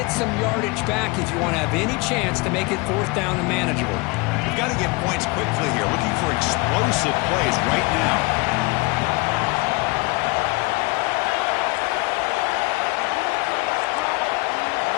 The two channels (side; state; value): right; quieter; 26.3 dB